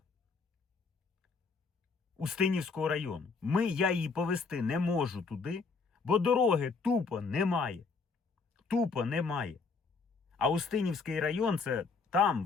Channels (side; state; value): right; quieter; 4.7 dB